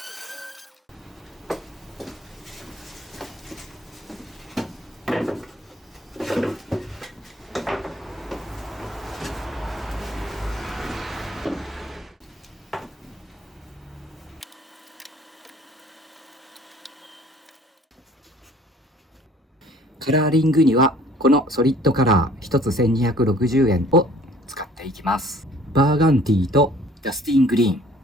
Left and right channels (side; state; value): both; normal; correlation 0.54